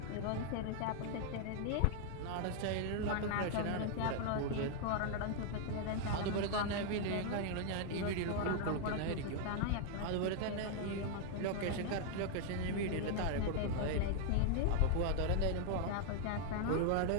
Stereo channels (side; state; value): both; different; correlation 0.00